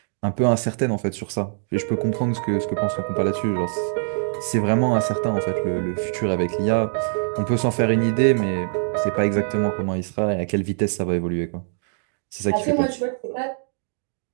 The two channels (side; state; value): left; silent; digital silence